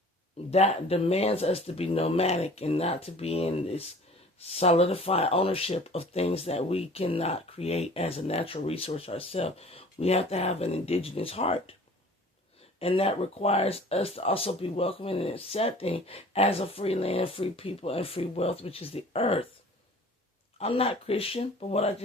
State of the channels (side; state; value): both; normal; correlation 0.47